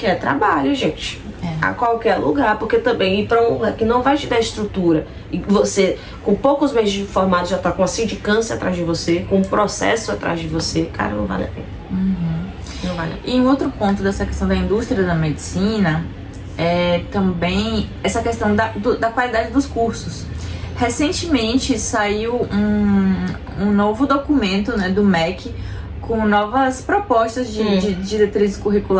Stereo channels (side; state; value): both; identical; correlation 1.00